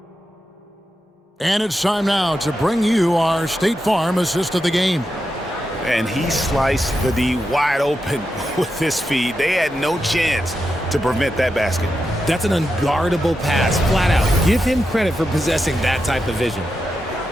And it's time now to bring you our State Farm assist of the game. And he sliced the D wide open with this feed. They had no chance to prevent that basket. That's an unguardable pass, flat out. Give him credit for possessing that type of vision.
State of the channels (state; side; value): normal; both; correlation 0.88